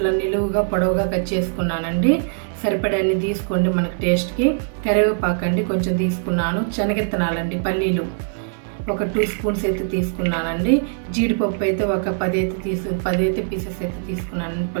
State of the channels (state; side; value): silent; left; 58 dB below the other